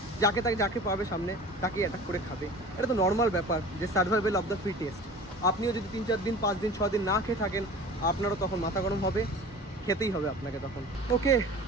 যাকে পাবে সামনে তাকেই অ্যাটাক করে খাবে। এটা তো নর্মাল ব্যাপার, যে সার্ভাইভাল অফ দ্য ফিটেস্ট। আপনিও যদি 3-4 দিন 5 দিন 6 দিন না খেয়ে থাকেন, আপনারও তখন মাথা গরম হবে, খেতেই হবে আপনাকে তখন। ওকে,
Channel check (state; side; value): normal; both; correlation 0.40